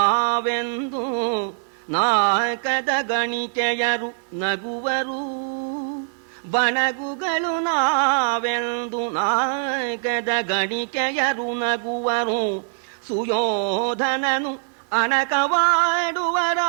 ನಾಲ್ಕದ ಗಣಿಕೆಯರು ನಗುವರು ಬಣಗುಗಳು ನಾವೆಂದು ನಾಲ್ಕದ ಗಣಿಕೆಯರು ನಗುವರು ಸುಯೋಧನನು ಅಣಕವಾಡುವರಾಯಿತು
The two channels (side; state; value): left; silent; 64 dB below the other